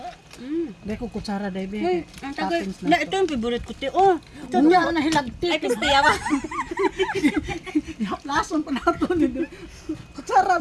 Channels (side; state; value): both; identical; correlation 1.00